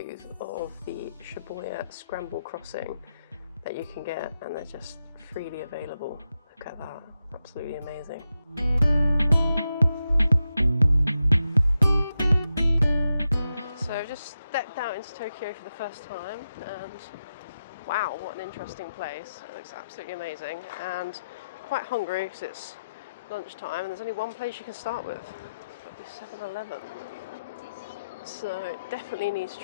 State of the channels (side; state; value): both; inverted; correlation -0.88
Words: of the Shibuya Scramble Crossing that you can get, and they're just freely available. Look at that, absolutely amazing. So I've just stepped out into Tokyo for the first time, and wow, what an interesting place. It looks absolutely amazing, and quite hungry because it's lunchtime and there's only one place you can start with. It's got to be 7-Eleven. So definitely need to